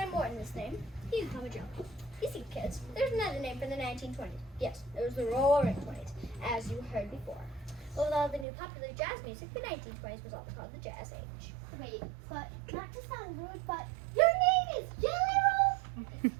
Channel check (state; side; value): drops out; left; at 8.5 s